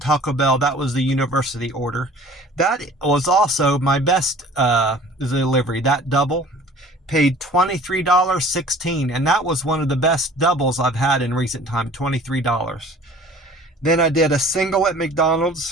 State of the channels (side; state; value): both; normal; correlation 0.47